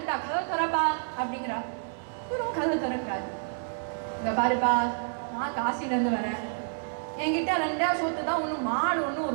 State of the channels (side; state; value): left; silent; 59 dB below the other